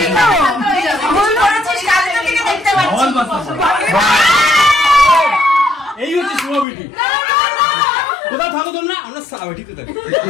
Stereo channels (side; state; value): right; drops out; at 6.7 s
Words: ভুল করেছিস, কালকে থেকে দেখতে পাচ্ছি। এই হচ্ছে সুমাবিটি। কোথায় থাকো তোমরা? আমরা সাবিটিতে থাকি।